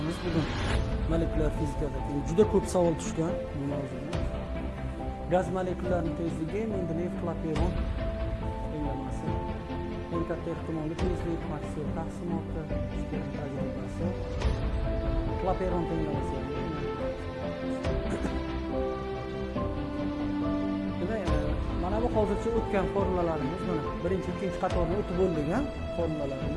bugun. Molekulyar fizikada juda ko'p savol tushgan bu mavzuda. Gaz molekullarining tezligi Mendeleyev Klaperon tenglamasi. Eng katta ehtimolli tezlik Maxwell taqsimoti, Stern tajribasi. Klaperon tenglamasi. Mana bu hozircha o'tgan formulalarimiz, mana birinchi, ikkinchi qatorni o'tib bo'lgan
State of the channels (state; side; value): identical; both; correlation 1.00